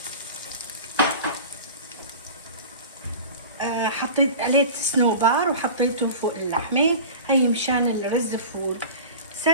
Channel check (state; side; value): inverted; both; correlation -0.36